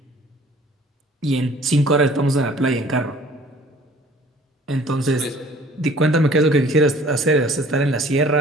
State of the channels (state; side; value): normal; both; correlation 0.53